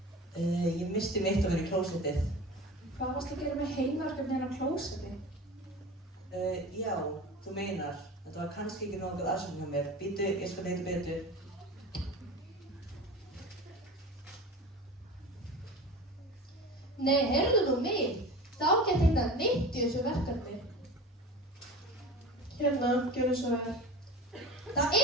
Ég misti mitt að vera í klósettið. Hvað varst að gera með heimaverkefni hérna á klósetti? Já, þú meinar. Þetta var kannski ekki nokkuð aðsum hjá mér. Bíddu, ég skal leita betur. Nei, heyrðu nú mig. Þá get hérna neitt í þessu verkefni. Hérna, gjörðu svo vel. Það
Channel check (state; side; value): normal; both; correlation 0.34